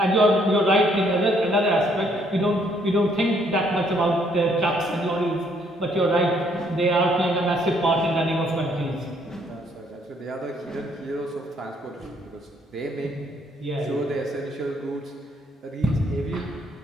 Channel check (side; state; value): both; normal; correlation 0.67